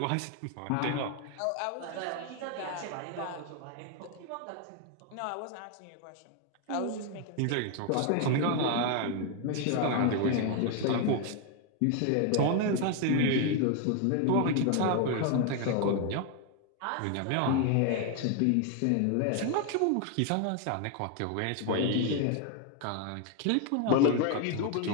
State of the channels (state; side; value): different; both; correlation 0.01